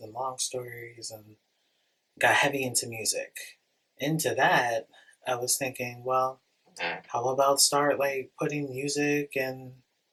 and long stories and got heavy into music. Into that, I was thinking, well, how about start like putting music and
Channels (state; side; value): identical; both; correlation 1.00